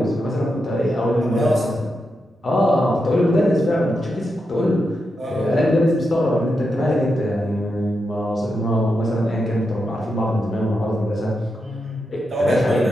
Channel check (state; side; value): normal; both; correlation 0.86